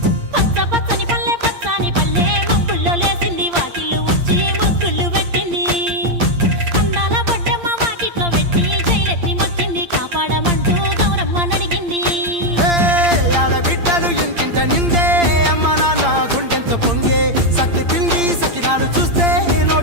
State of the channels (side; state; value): left; late; 8.7 ms